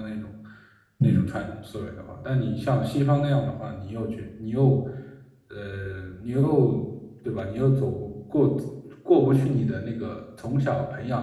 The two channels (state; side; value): identical; both; correlation 1.00